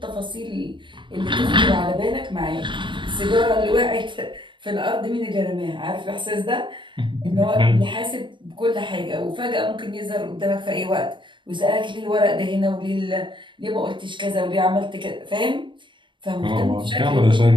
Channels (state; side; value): late; left; 0.23 ms